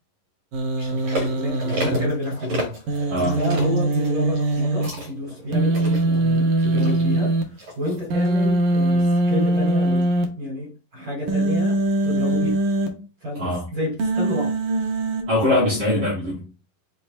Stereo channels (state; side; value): late; left; 11 ms